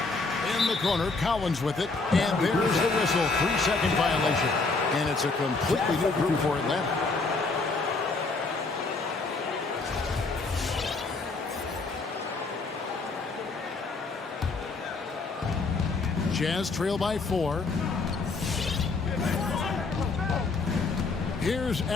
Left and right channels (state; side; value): quieter; right; 3.9 dB